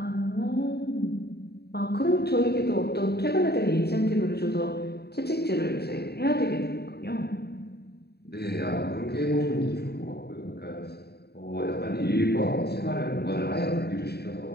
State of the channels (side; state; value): right; late; 0.47 ms